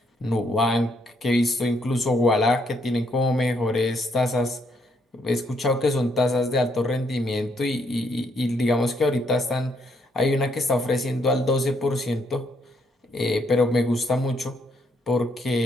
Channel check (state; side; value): normal; both; correlation 0.73